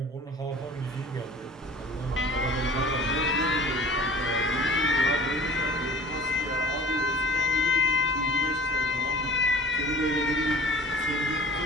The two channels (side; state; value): both; normal; correlation 0.45